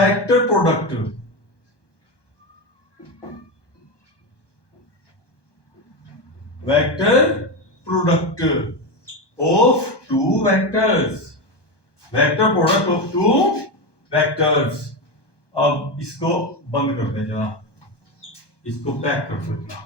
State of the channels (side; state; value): right; late; 1.2 ms